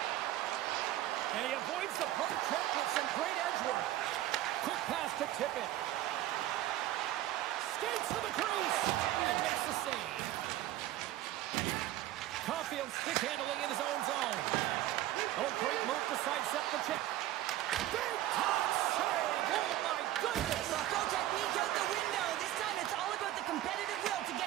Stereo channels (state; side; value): quieter; left; 14.3 dB